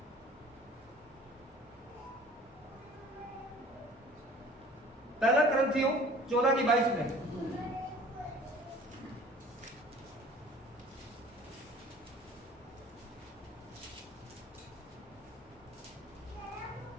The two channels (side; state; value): both; normal; correlation 0.48